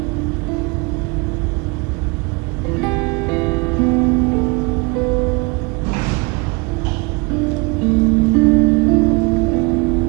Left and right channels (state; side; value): quieter; left; 29.0 dB